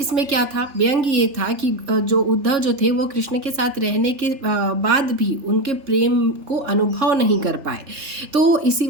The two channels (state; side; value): late; left; 3.4 ms